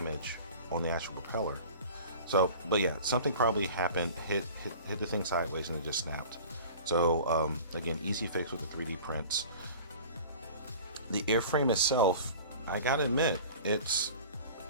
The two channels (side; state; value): both; inverted; correlation -0.41